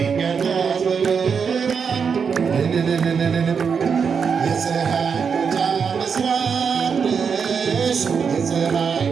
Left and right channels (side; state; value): left; quieter; 6.2 dB